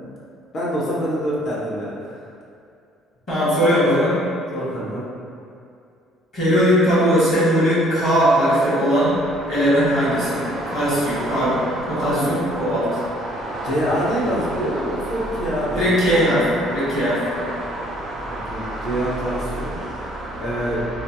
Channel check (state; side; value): normal; both; correlation 0.60